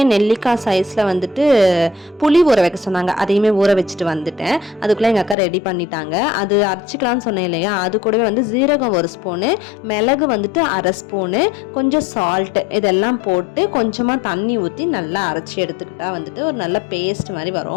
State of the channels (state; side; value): drops out; right; at 5.4 s